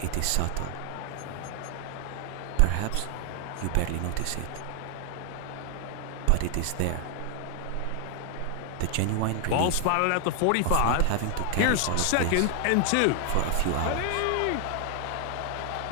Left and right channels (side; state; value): both; different; correlation 0.00